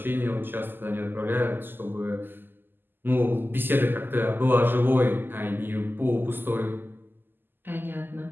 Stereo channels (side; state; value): left; late; 0.094 ms